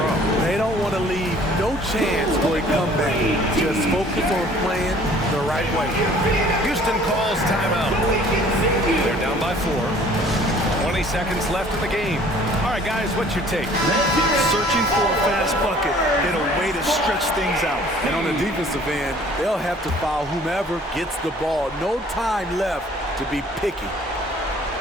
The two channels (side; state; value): both; normal; correlation 0.54